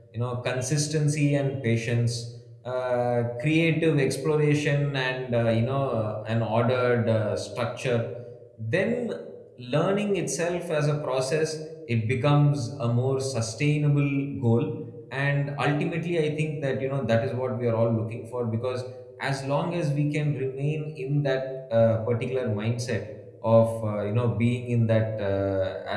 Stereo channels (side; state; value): both; identical; correlation 1.00